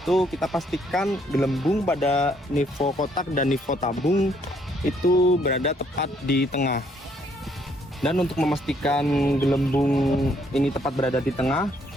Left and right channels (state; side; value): normal; both; correlation 0.68